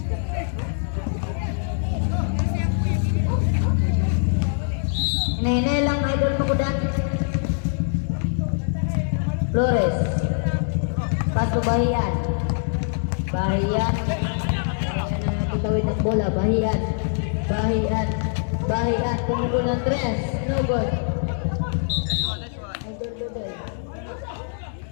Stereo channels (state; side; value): silent; right; digital silence